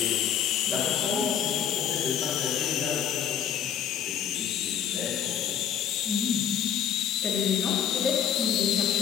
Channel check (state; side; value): quieter; right; 9.0 dB